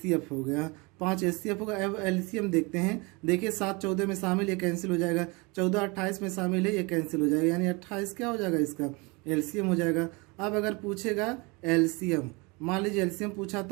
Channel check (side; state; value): left; quieter; 27.6 dB